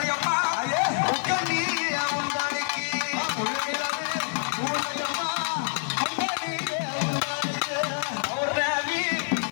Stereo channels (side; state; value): right; silent; 60 dB below the other